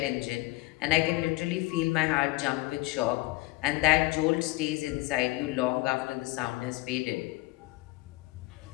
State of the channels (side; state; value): right; quieter; 20.4 dB